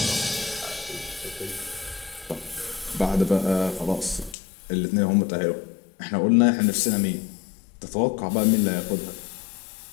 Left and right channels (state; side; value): drops out; right; at 4.4 s